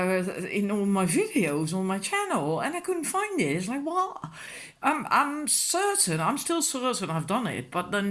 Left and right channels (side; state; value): both; identical; correlation 1.00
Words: my videos on my channel, and I couldn't find it. It's like, what? I'm certain, I'm still certain I've done it, but